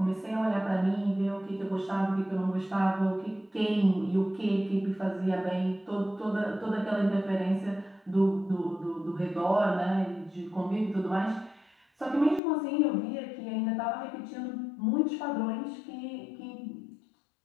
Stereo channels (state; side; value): drops out; right; at 12.4 s